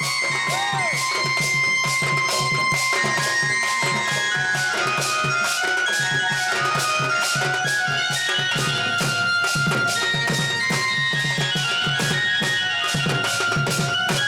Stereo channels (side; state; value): both; identical; correlation 1.00